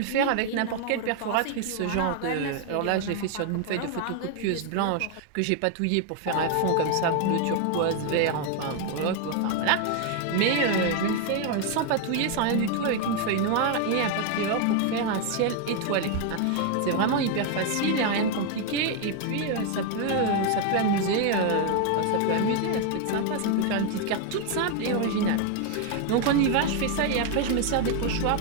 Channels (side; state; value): both; different; correlation 0.01